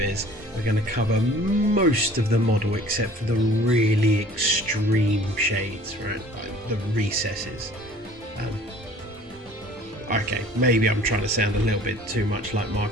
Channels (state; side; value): normal; both; correlation 0.50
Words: we're going to cover most of the model except for the really extreme shades, right, like the recesses. Okay, maybe I'm trying to sound a little bit too much like